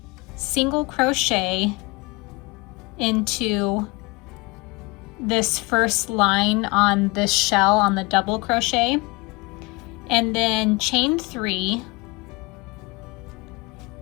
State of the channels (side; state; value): right; quieter; 25.8 dB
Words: single crochet into this first line on this shell on the double crochet, and then chain 3,